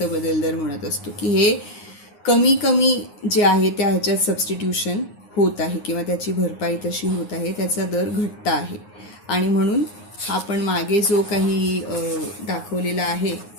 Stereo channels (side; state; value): right; late; 9.6 ms